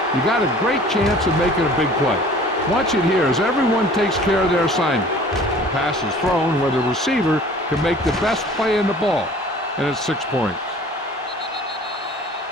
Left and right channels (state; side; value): normal; both; correlation 0.48